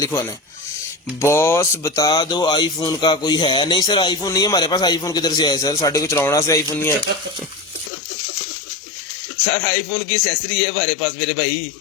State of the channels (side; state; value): right; drops out; at 7.9 s